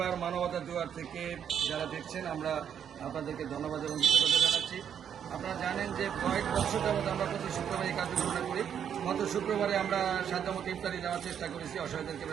মানবতা দুয়ার থেকে যারা দেখছেন আমরা আপনাদেরকে ধন্যবাদ এবং কৃতজ্ঞতা জানাচ্ছি। আপনারা জানেন যে কয়েক বছর যাবত আমরা প্রতি শুক্রবার এই কার্যক্রমটা করি। গত শুক্রবারে আমরা সাধ্যমতো ইফতারি দেওয়ার চেষ্টা করেছি অসহায়দেরকে,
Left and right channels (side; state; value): left; quieter; 8.6 dB